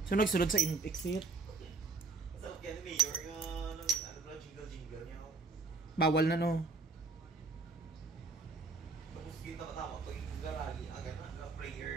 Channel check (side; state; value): left; quieter; 4.0 dB